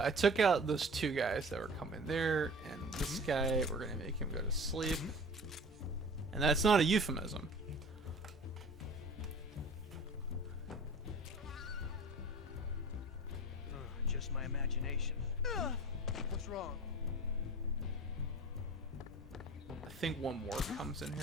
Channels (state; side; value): normal; both; correlation 0.40